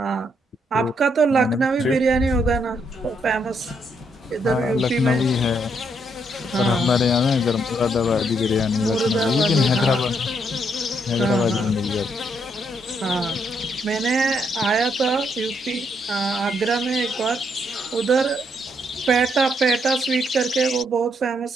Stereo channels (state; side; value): normal; both; correlation 0.75